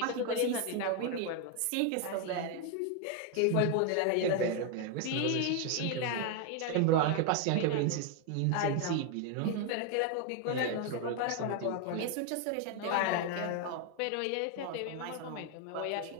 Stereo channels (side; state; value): both; different; correlation 0.01